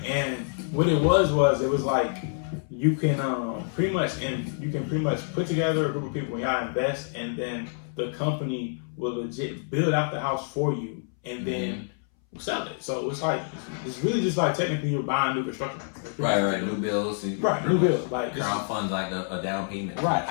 And what it was like you can pretty much put together a group of people and y'all invest, and then the company will legit build out the house for you, and then sell it. So it's like it's really just like technically you're buying new construction. Right. New bills. New bills. Like crowdfund like a down payment. Right.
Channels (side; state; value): right; silent; 60 dB below the other